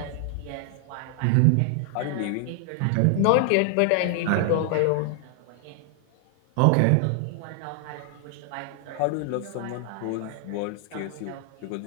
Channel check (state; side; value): different; both; correlation 0.00